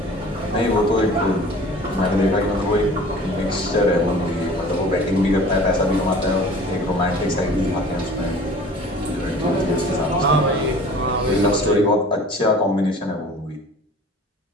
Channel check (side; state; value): both; normal; correlation 0.45